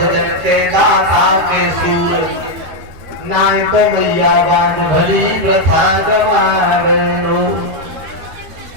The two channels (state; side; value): late; left; 13 ms